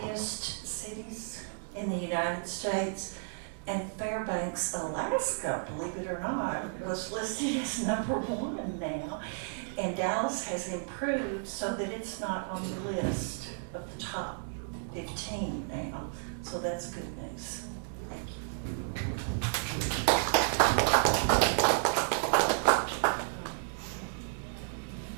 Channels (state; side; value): silent; left; digital silence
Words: cities in the United States, and Fairbanks, Alaska, believe it or not, was listed as #1 now. And Dallas has improved so that it's not on the list of the top 15 now. So that's good news. Thank you.